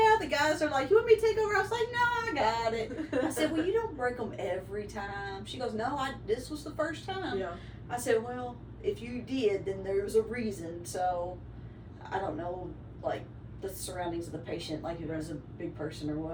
The guys are like, "You want me to take over?" I was like, "No, I got it." I said, "Well, you don't break them every time." She goes, "No, this was the first time." Yeah. I said, "Well, if you did, then there was a reason." So I don't know, like, the surroundings of the patient, like if there's a big person or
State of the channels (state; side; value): identical; both; correlation 1.00